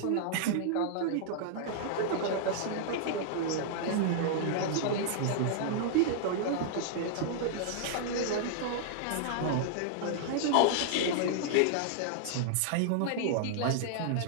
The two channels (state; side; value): different; both; correlation -0.01